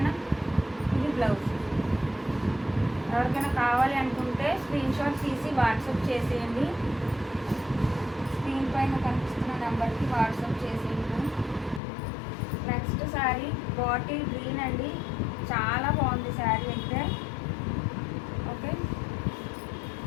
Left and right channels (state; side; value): drops out; right; at 11.8 s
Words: ఇది బ్లౌజ్. ఎవరికైనా కావాలి అనుకుంటే స్క్రీన్ షాట్ తీసి వాట్సాప్ చేసేయండి. స్క్రీన్ పైన కనిపిస్తున్న నెంబర్కి వాట్సాప్ చేసేయండి. నెక్స్ట్ శారీ బాటిల్ గ్రీన్ అండి. చాలా బాగుంది శారీ అయితే. ఓకే.